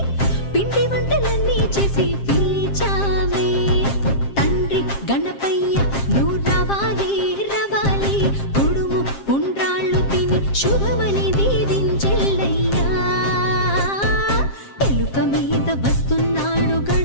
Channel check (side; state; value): right; late; 7.5 ms